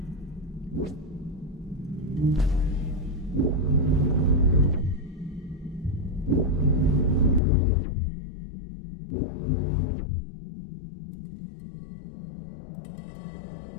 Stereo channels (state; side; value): drops out; right; at 7.4 s